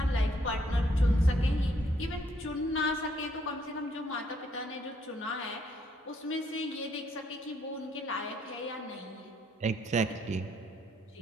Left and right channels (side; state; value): both; normal; correlation 0.69